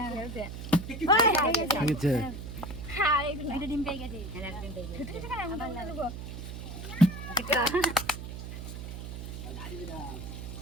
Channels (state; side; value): noise; right; hum, 8 dB below the sound